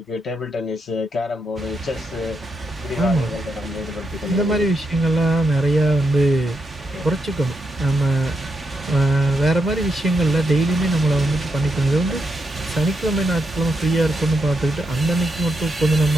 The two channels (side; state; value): both; normal; correlation 0.82